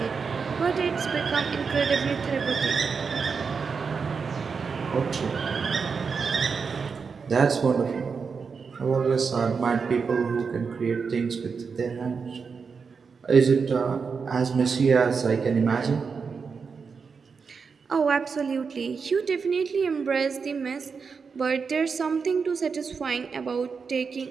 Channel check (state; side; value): quieter; left; 5.5 dB